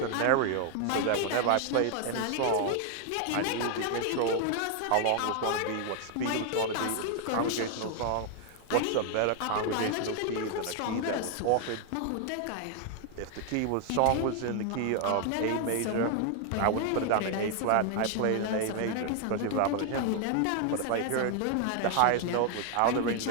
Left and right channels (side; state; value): both; different; correlation 0.00